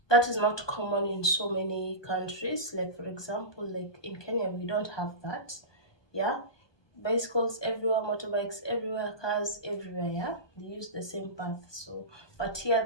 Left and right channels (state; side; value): late; right; 1.2 ms